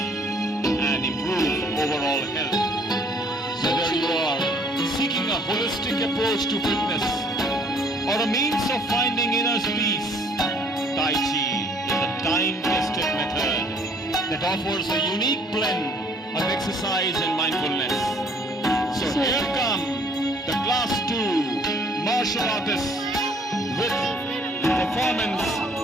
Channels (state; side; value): normal; both; correlation 0.60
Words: and improve overall health. Whether you are seeking a holistic approach to fitness or a means of finding inner peace, Tai Chi is a time-tested method that offers a unique blend of exercise and mindfulness. So here come the Class 2 martial artists with performance.